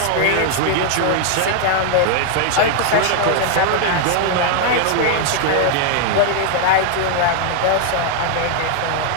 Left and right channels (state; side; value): different; both; correlation 0.00